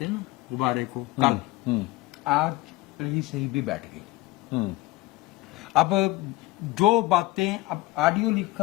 ہیں نا غبارے کو, کل آج رہی صحیح بھی بیٹھ گئی. اب جو باتیں, اب آڈیو لیک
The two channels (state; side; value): quieter; right; 19.4 dB